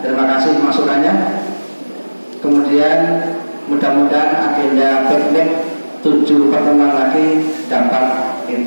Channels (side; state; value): both; inverted; correlation -1.00